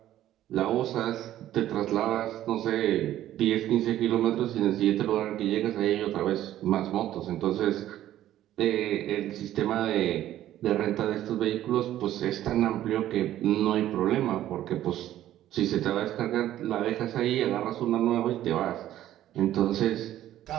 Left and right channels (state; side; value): quieter; left; 13.0 dB